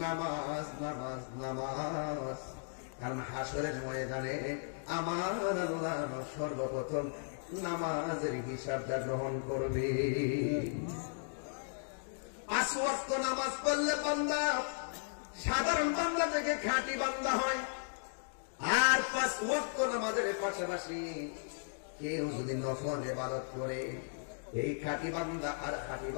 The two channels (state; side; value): silent; right; digital silence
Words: নামাজ নামাজ নামাজ। কারণ হাসরের ময়দানে আমার আল্লাহ সর্বপ্রথম নামাজের হিসাবটা গ্রহণ করবে। 5 ওয়াক্ত নামাজ পড়লে বান্দা সাধারণ বান্দা থেকে খাঁটি বান্দা হয়। আর 5 ওয়াক্ত নামাজের পাশাপাশি কেউ যদি নফল ইবাদত করে, এই খাঁটি বান্দা আর খাঁটি